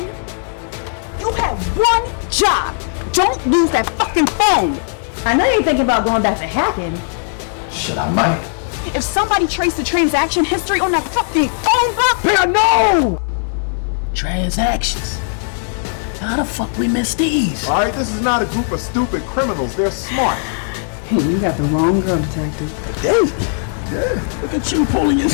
You have one job. Don't lose that fucking phone. I know you're thinking about going back to hacking. Shit, I might. If somebody traced the transaction history on that fucking phone book, I know! Transactions. How the fuck we missed these? Alright, this is not a group of stupid criminals. They're smart. Hey, you got the wrong girl, detective. Hey, yeah, look at you pulling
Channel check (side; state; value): right; silent; digital silence